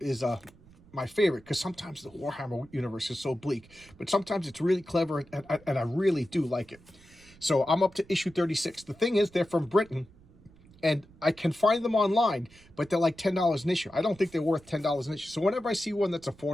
my favorite, because sometimes the Warhammer universe is so bleak. But sometimes it's really clever, and I really do like it. So I'm up to issue 36. The thing is, they're from Britain. And I can find them online, but they're like $10 an issue. I don't think they're worth $10 an issue. So whenever I see one that's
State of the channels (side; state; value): right; noise; rumble, 25 dB below the sound